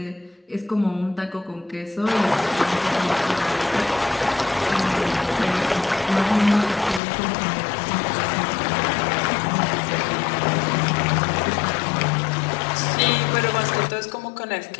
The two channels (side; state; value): right; drops out; at 7.0 s